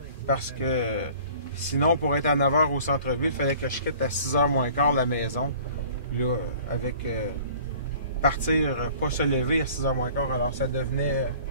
parce que sinon, pour être à 9h au centre-ville, il fallait que je quitte à 6h moins quart la maison, là, avec... partir, pas se lever à 6h moins quart, alors ça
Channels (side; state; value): both; inverted; correlation -0.48